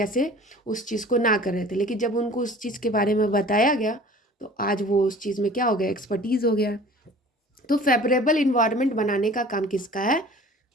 उस चीज़ को ना कर रहे थे, लेकिन जब उनको उस चीज़ के बारे में बताया गया तो आज वो उस चीज़ में क्या हो गया, एक्सपर्टीज़ हो गया। तो फेवरेबल इन्वायरमेंट बनाने का काम किसका है,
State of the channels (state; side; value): normal; both; correlation 0.45